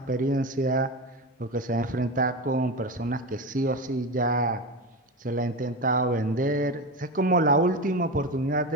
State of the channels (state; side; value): normal; both; correlation 0.21